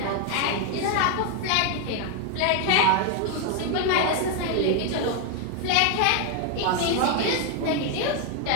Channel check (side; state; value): both; different; correlation 0.01